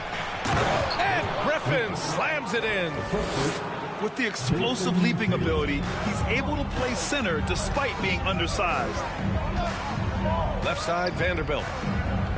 And Griffin slams it in. With the explosive leaping ability, he's able to play center despite being undersized. Left side, Vanderbilt.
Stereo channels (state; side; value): identical; both; correlation 1.00